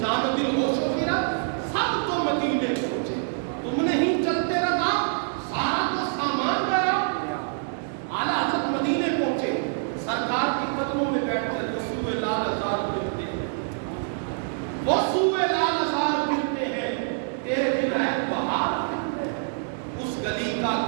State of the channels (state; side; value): silent; left; digital silence